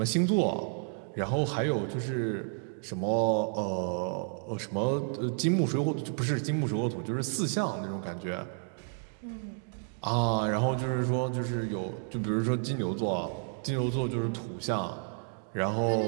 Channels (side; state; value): left; silent; 57 dB below the other